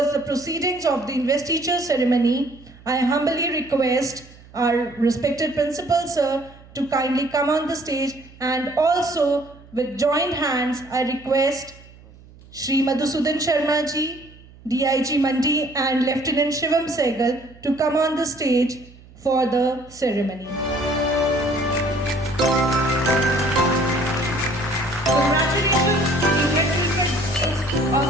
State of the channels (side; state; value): right; noise; hum, 23 dB below the sound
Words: the proceedings of the investiture ceremony, I humbly request our respected principal, sir, to kindly come on the stage, and also with joined hands, I request Shri Madhusudan Sharma ji, DIG Mandi and Lieutenant Shivam Sehgal to come on the stage for the ceremony. Congratulations to the head teachers of